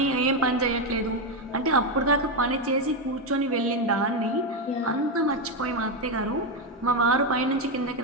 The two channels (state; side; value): normal; both; correlation 0.07